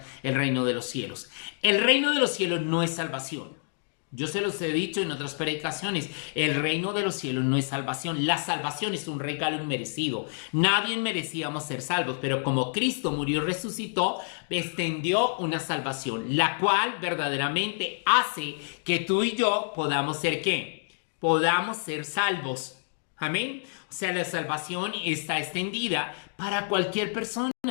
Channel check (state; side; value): silent; right; digital silence